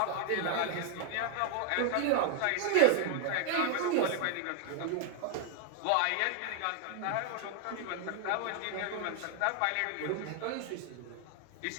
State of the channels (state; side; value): different; both; correlation 0.00